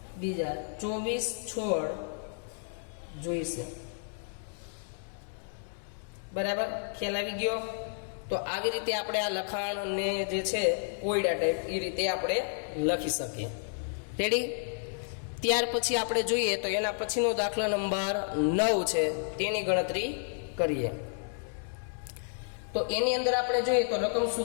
24 છોડ જોઈશે. બરાબર. ખ્યાલ આવી ગયો. તો આવી રીતે આપણે આ લખાણને જે છે કોયડા ટાઈપ એ રીતે આપણે લખી શકીએ. રેડી. ત્યાર પછી આપણે જોઈએ તો એના પછીનો દાખલા નંબર 9 છે, તેની ગણતરી કરીએ. તો એની અંદર આપણે જોઈએ તો રકમ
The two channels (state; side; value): silent; right; digital silence